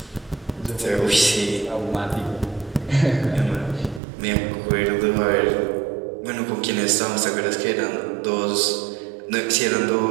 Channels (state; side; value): drops out; left; at 4.0 s